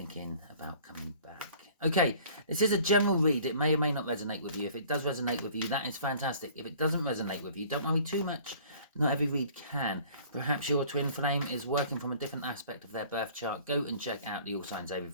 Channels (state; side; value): inverted; both; correlation -0.51